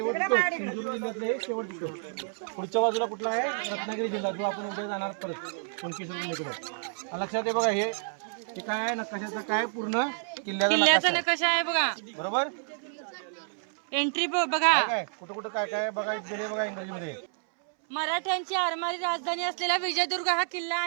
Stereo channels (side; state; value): left; silent; 58 dB below the other